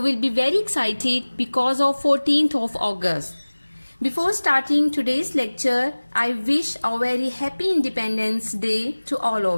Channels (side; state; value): both; inverted; correlation -1.00